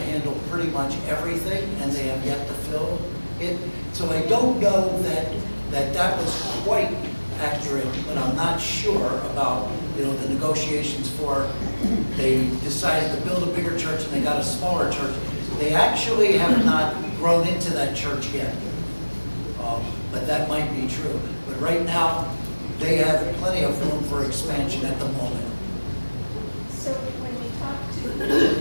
pretty much everything, and they have yet to fill it. So I don't know that was quite accurate, but I'm not sure about, the negotiations for, they decided to build a bigger church and they got a smaller church. They actually have not grown into that church yet, but that might be true. But right now, they have plenty of room for expansion at the moment. So when we talked to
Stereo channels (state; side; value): inverted; both; correlation -1.00